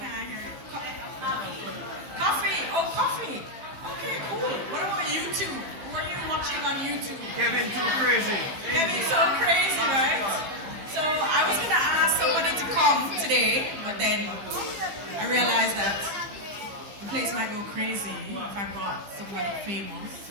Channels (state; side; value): late; left; 15 ms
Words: I hear you? Coffee. Oh, coffee. Okay, cool. What about YouTube? Who are you watching on YouTube? Kevin too crazy. Kevin so crazy, right? So I was gonna ask somebody to come today, but then I realized that the place might go crazy if I brought someone famous,